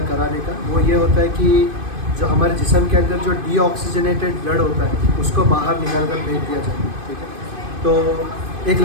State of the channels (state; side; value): late; left; 2.5 ms